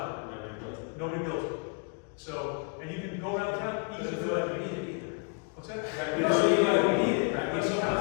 work. Nobody builds it. So, and you can go around town, even though we need it either. What's that? Right. We don't need it. Right.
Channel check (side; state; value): right; quieter; 39.8 dB